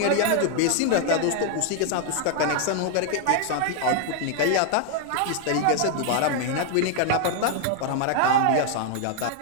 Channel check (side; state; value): both; different; correlation 0.00